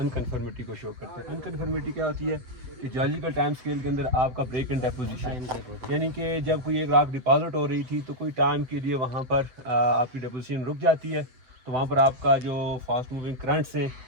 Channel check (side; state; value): left; late; 7.9 ms